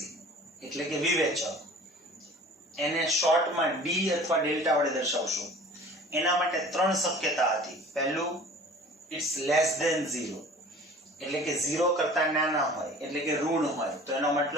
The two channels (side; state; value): both; normal; correlation 0.45